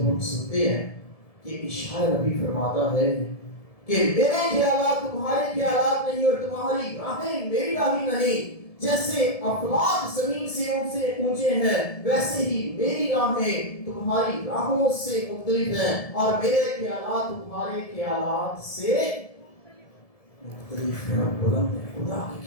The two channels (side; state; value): right; late; 1.7 ms